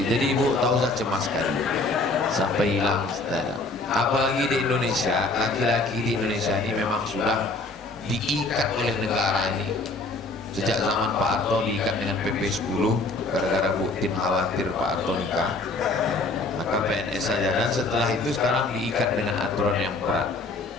jadi ibu tak usah cemas sekali sampai hilang. Apalagi di Indonesia, laki-laki di Indonesia ini memang sudah diikat oleh negara ini. Sejak zaman Pak Harto diikat dengan PP 10 gara-gara Bu Tin khawatir Pak Harto nikah, maka PNS saja, dan setelah itu sekarang diikat dengan aturan yang berat.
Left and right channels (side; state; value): right; quieter; 3.2 dB